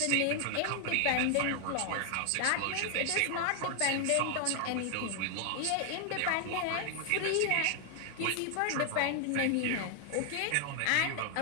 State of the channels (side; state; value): both; different; correlation 0.00